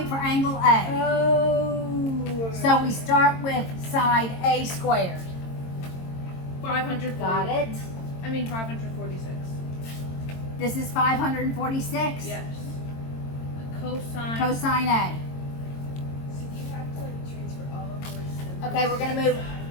for angle A. Oh. So we start with side A squared. 540. Got it? I mean 546. This is 546? Yes. The cosine. Cosine A. So you have to like transfer all of those numbers Okay, we're gonna move.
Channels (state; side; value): late; right; 22 ms